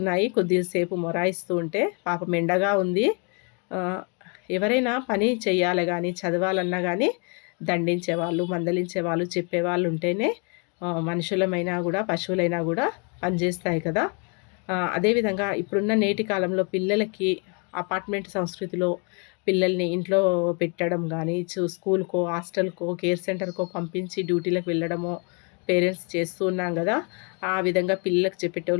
కొద్దిసేపు మొరాయిస్తూ ఉంటే. పాపం ఎండగా ఉంది. ఎవరైనా పని చెయ్యాలి కానీ, చదవాలన్నా కానీ దండించేవాళ్ళు, మందలించేవాళ్ళు, చెప్పేవాళ్ళు ఉంటేనే మనుషులమైనా కూడా పశువులైనా కూడా పనిచేస్తాయి కదా. అదేవిధంగా ఇప్పుడున్న నేటి కాలంలో పిల్లలకి అపార్ట్మెంట్ సంస్కృతిలో పిల్లల్ని ఇంట్లో పెట్టడం కానీ, స్కూల్కో, హాస్టల్కో, కేర్ సెంటర్కో పంపించి డ్యూటీలకు వెళ్ళడమో పేరెంట్స్ చేస్తూ ఉన్నాం కదా. ఆ విధంగా పిల్లలకు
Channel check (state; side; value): quieter; right; 35.3 dB